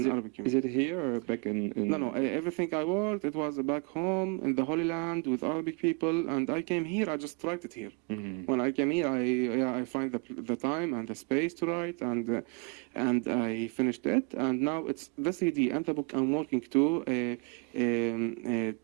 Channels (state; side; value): quieter; left; 32.3 dB